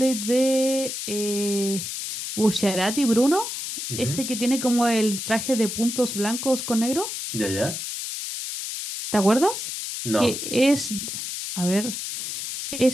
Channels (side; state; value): left; noise; hiss, 5 dB below the sound